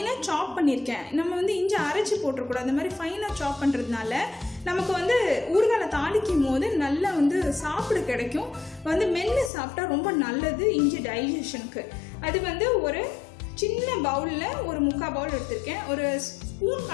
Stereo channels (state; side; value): drops out; right; at 9.5 s